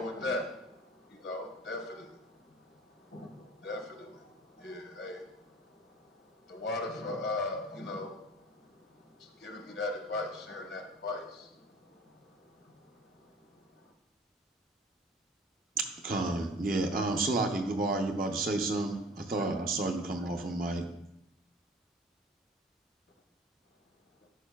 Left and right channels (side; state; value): both; normal; correlation 0.47